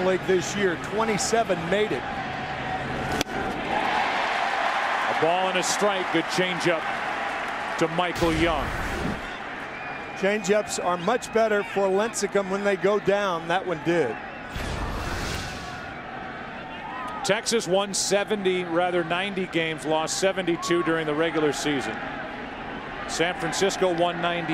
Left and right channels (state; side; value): identical; both; correlation 1.00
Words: League this year. 27 made it. A ball and a strike. Good changeup to Michael Young. Changeups are much better for Lincecum when they go down. That one did. Texas won 90 games, lost 72 during the regular season. San Francisco won